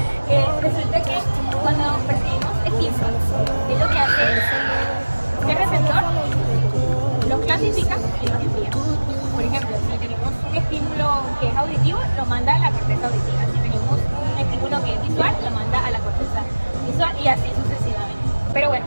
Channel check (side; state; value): both; inverted; correlation -1.00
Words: Resulta que cuando percibimos estímulos, es lo que hace el receptor, los clasifica y los envía. Por ejemplo, si tenemos un estímulo que es auditivo, lo manda a la corteza auditiva. Si tenemos un estímulo que es visual, lo manda a la corteza visual, y así sucesivamente. Pero bueno,